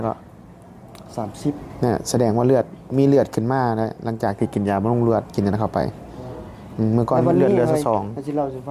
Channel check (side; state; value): both; identical; correlation 1.00